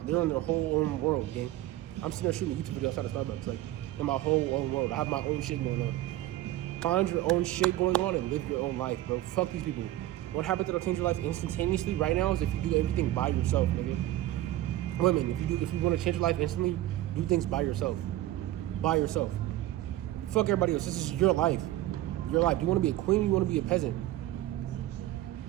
in their whole own world, gang. I'm sitting there shooting a YouTube video outside of Starbucks, like in my whole own world. I have my own shit going on. Find your own shit going on and live your own life, bro. Fuck these people. One habit that'll change your life instantaneously right now is if you do everything by yourself, nigga. Women, if you want to change your life instantly, do things by yourself. By yourself. Fuck everybody else. This is your life. Your life. Do you want to be a queen or you want to be a peasant?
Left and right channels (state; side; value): quieter; left; 15.1 dB